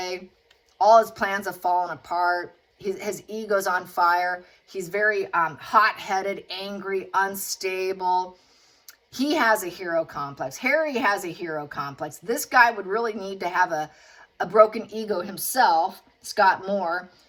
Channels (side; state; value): both; identical; correlation 1.00